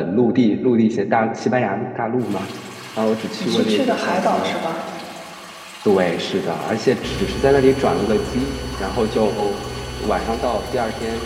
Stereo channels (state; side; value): identical; both; correlation 1.00